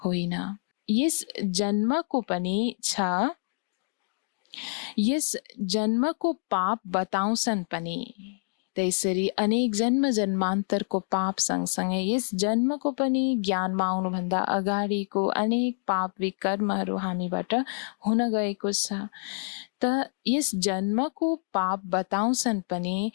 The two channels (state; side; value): silent; right; digital silence